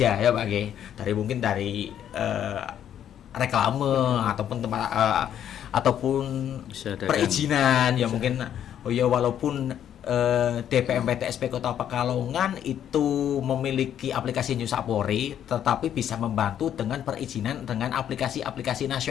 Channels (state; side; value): quieter; right; 10.0 dB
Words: ya Pak G. Mungkin dari reklame ataupun tempat ataupun Bisa ada perizinan, ya mungkin walaupun DPMPTSP Kota Pekalongan itu memiliki aplikasi New Sapori, tetapi bisa membantu dengan perizinan dengan aplikasi-aplikasi